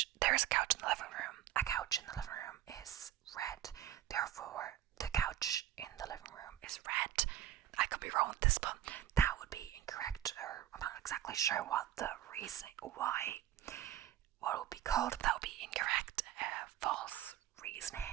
There is a couch in the living room. A couch in the living room is red. Therefore, the couch in the living room is red. I could be wrong with this, but that would be incorrect, or I'm not exactly sure what the reasoning, what it would be called, but that would be incorrect, false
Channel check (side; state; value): left; quieter; 12.1 dB